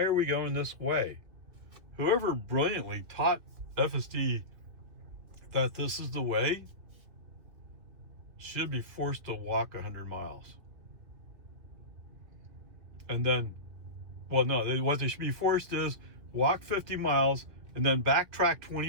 are we going this way? Whoever brilliantly taught FSD that this is the way should be forced to walk 100 miles. And then, well, no, what they should be forced is walk 50 miles and then backtrack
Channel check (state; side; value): late; left; 2.7 ms